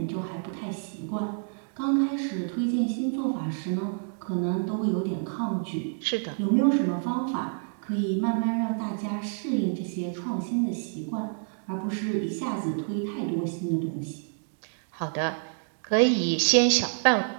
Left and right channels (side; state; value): left; silent; digital silence